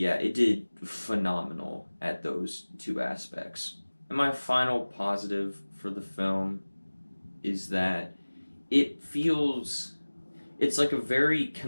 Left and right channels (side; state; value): both; inverted; correlation -1.00